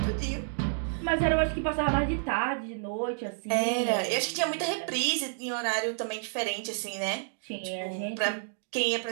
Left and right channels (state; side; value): silent; left; digital silence